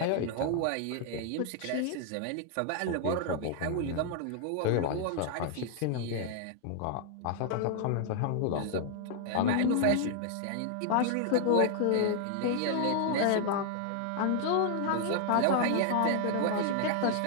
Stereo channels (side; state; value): both; different; correlation 0.00